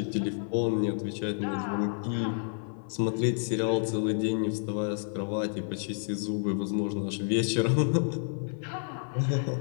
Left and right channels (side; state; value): right; silent; 58 dB below the other